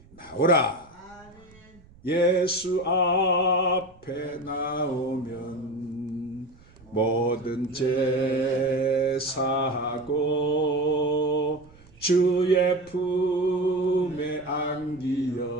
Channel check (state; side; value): noise; right; rumble, 25 dB below the sound